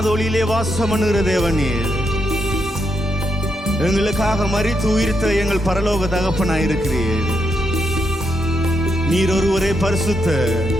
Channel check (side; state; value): both; normal; correlation 0.81